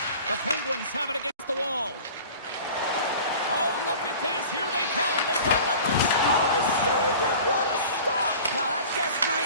The Penguins have it against the wall. Oh, look at this. Here they come. They've got numbers. Oh, saved it. What a stop. Well, that's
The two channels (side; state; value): both; inverted; correlation -0.41